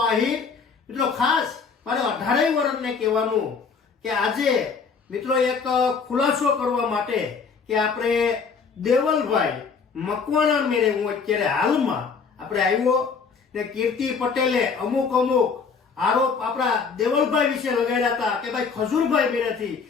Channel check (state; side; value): quieter; right; 5.5 dB